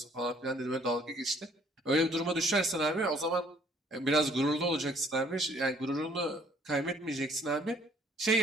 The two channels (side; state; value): both; normal; correlation 0.61